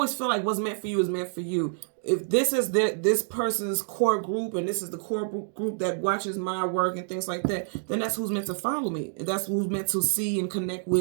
feel like what's meant for you is meant for you. If this is this person's core group and this is the core group that watches my work and things like that, then that's who's meant to follow me. That's who's meant to see and connect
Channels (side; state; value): left; silent; digital silence